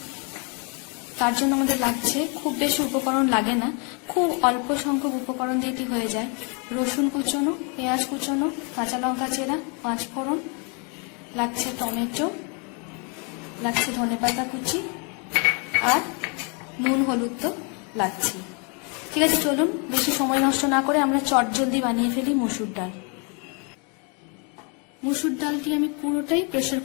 তার জন্য আমাদের লাগছে, খুব বেশি উপকরণ লাগে না, খুব অল্প সংখ্যক উপকরণ দিয়ে এটি হয়ে যায়। রসুন কুচনো, পেঁয়াজ কুচনো, কাঁচা লঙ্কা চেরা, 5 ফোড়ন, লাগছে টমেটো, লাগছে ধনেপাতা কুচি, আর নুন হলুদ তো লাগছে। ঠিক আছে, চলুন বেশি সময় নষ্ট না করে আমরা চটজলদি বানিয়ে ফেলি মুসুর ডাল। মুসুর ডালটি আমি পুরোটাই প্রেশার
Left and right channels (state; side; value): quieter; right; 35.1 dB